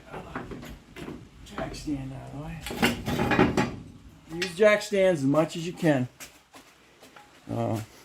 stand out of the way. Use jack stands as much as you can. All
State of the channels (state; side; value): identical; both; correlation 1.00